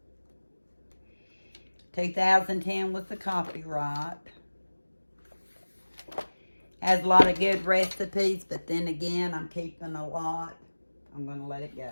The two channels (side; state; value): both; inverted; correlation -1.00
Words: 2010 was the copyright. Has a lot of good recipes, but then again, I'm keeping a lot. I'm going to let it